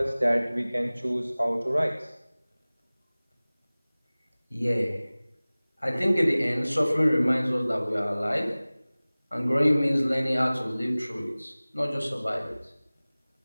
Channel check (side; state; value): both; inverted; correlation -0.99